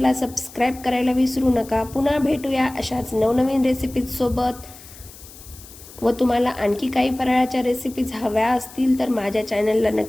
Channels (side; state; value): left; noise; hiss, 19 dB below the sound